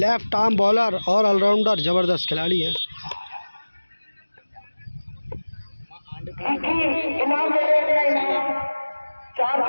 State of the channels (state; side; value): inverted; both; correlation -1.00